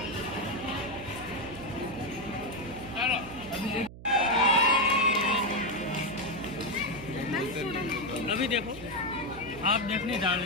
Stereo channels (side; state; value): right; noise; hum, 15 dB below the sound